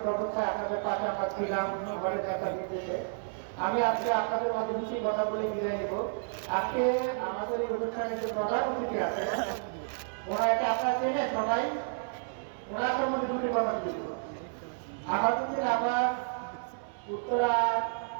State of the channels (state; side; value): silent; left; 57 dB below the other